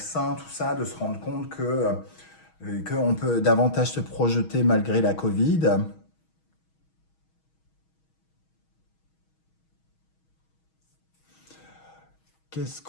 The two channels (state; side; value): late; right; 6.3 ms